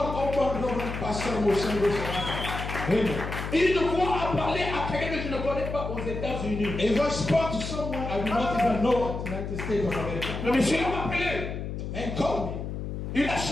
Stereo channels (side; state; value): left; noise; hum, 5 dB below the sound